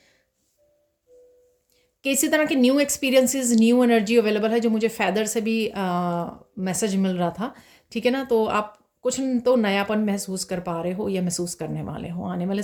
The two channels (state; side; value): identical; both; correlation 1.00